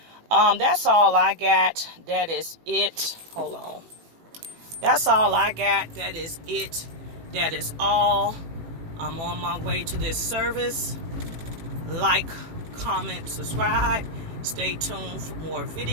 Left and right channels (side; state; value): left; late; 18 ms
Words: that's all I got. That is it. Hold on. That's all I got. That is it. That is all. I'm on my way to this service. Like, comment, subscribe. Stay tuned for more